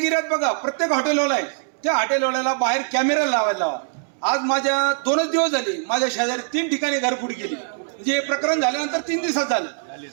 एरियात बघा, प्रत्येक हॉटेलवाला आहे, त्या हॉटेलवाल्याला बाहेर कॅमेरा लावायला लावा. आज माझ्या 2च दिवस झाले, माझ्या शेजारी 3 ठिकाणी घरफोड केली. म्हणजे हे प्रकरण झाल्यानंतर 3 दिवसात झालं.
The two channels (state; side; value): silent; left; digital silence